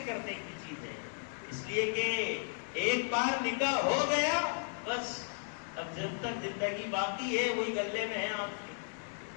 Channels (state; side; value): silent; right; 54 dB below the other